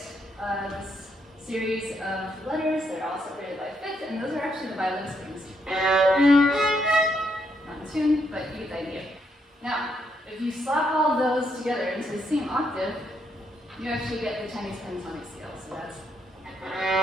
this series of letters that are all separated by fifth, and those are actually the violin strings. Not in tune, but you get the idea. Now, if you slap all of those together into the same octave, you actually get the Chinese pentatonic scale. So that's.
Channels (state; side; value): normal; both; correlation 0.77